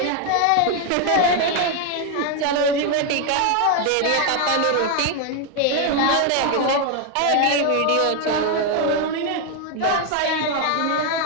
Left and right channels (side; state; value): both; different; correlation 0.01